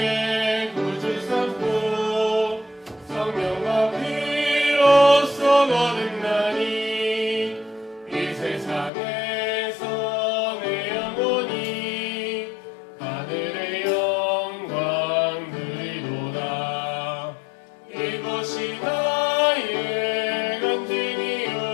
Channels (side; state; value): right; drops out; at 8.9 s